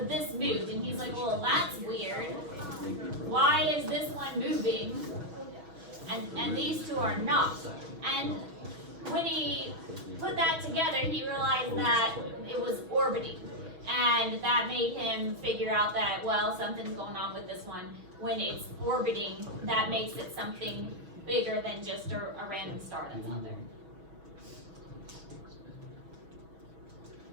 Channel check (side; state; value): left; late; 6.2 ms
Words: this moved. And he's like, well, that's weird. Why is this one moving, and these two are not? And when he put that together, he realized that it was orbiting. And that made him figure out that, well, something's going on with this one. When it's orbiting, that makes it something bigger than just a random star that's out there.